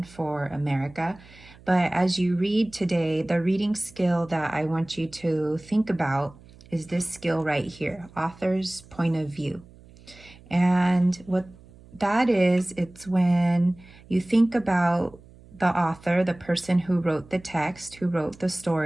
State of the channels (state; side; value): noise; right; hum, 23 dB below the sound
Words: for America. But as you read today, the reading skill that I want you to think about is this skill right here, author's point of view. And what that is, it's when you think about the author, the person who wrote the text, who wrote the